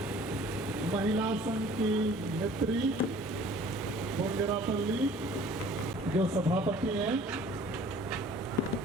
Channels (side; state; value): both; normal; correlation 0.50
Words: महिला संघ की नेत्री बोंगरापल्ली जो सभापति हैं